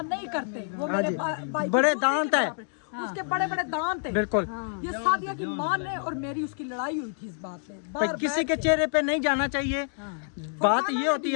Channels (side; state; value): right; silent; digital silence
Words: नहीं करते, वो मेरे भाई बड़े दांत है, उसके बड़े बड़े दांत है, बिल्कुल। ये सादिया की माँ ने और मेरी उसकी लड़ाई हुई थी इस बात पे। किसी के चेहरे पे नहीं जाना चाहिए। बात ये होती